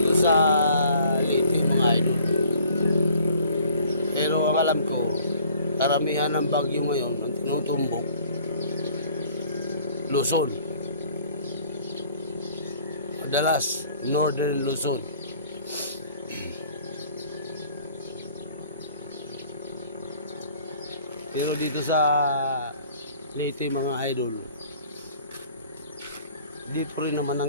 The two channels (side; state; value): both; inverted; correlation -0.54